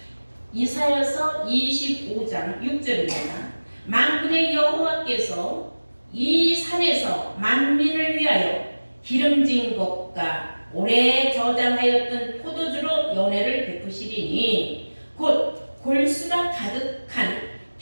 이사야서 25장 6절입니다. 만군의 여호와께서 이 산에서 만민을 위하여 기름진 것과 오래 저장하였던 포도주로 연회를 베푸시리니 곧 골수가 가득한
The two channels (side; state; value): both; inverted; correlation -1.00